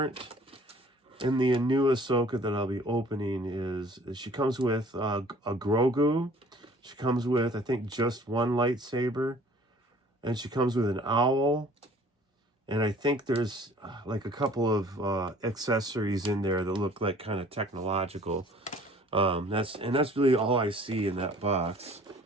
in the new Ahsoka that I'll be opening is she comes with a Grogu. She comes with, I think, just 1 lightsaber. And she comes with an owl. And I think there's like a couple of accessories in there that look like kind of technological. That's really all I see in that box.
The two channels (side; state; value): both; normal; correlation 0.52